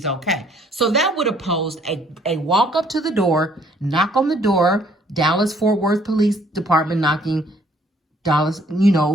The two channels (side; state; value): both; normal; correlation 0.63